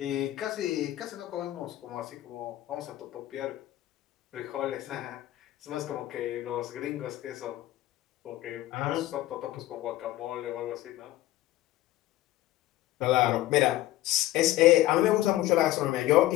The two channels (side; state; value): right; quieter; 15.5 dB